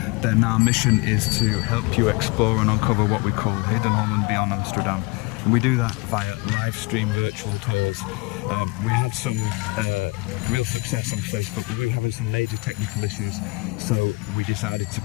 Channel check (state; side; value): quieter; right; 25.7 dB